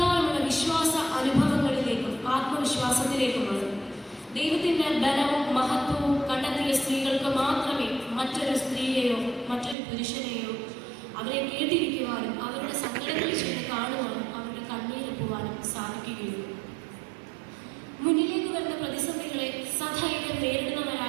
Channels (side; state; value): left; drops out; at 9.8 s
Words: വിശ്വാസ അനുഭവങ്ങളിലേക്കും ആത്മവിശ്വാസത്തിലേക്കുമാണ്. ദൈവത്തിൻ്റെ ബലവും മഹത്വവും കണ്ടെത്തിയ സ്ത്രീകൾക്ക് മാത്രമേ മറ്റൊരു സ്ത്രീയെയോ മറ്റൊരു പുരുഷനെയോ അവരെ കേട്ടിരിക്കുവാനും അവരുടെ സങ്കടങ്ങൾ ചെയ്ത് കാണുവാനും അവരുടെ കണ്ണീരൊപ്പുവാനും സാധിക്കുകയുള്ളൂ. മുന്നിലേക്ക് വരുന്ന പ്രതിസന്ധികളെ സധൈര്യം